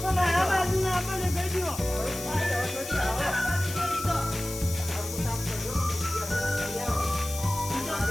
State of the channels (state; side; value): noise; left; hiss, 9 dB below the sound